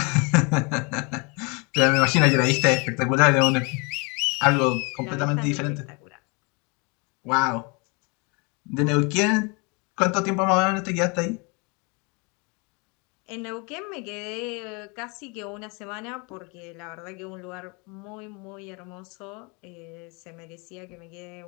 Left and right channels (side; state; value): right; quieter; 30.7 dB